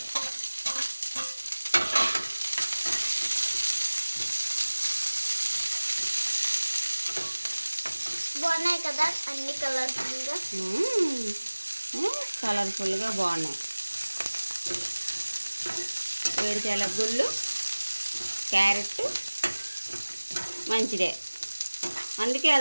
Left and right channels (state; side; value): inverted; both; correlation -1.00